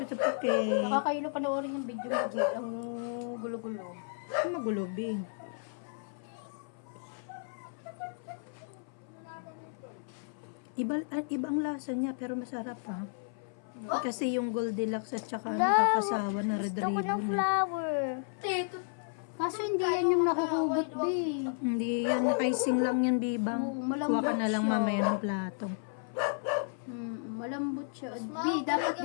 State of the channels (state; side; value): silent; right; 56 dB below the other